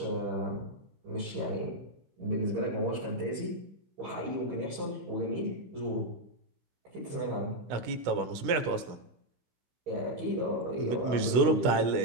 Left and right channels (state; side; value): late; left; 16 ms